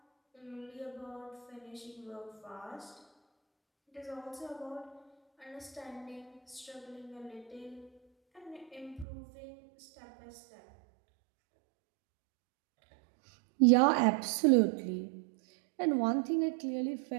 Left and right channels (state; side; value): drops out; left; at 9.1 s